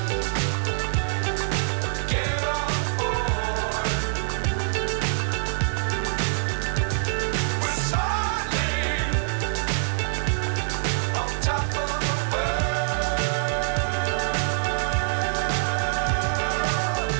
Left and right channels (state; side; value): silent; left; digital silence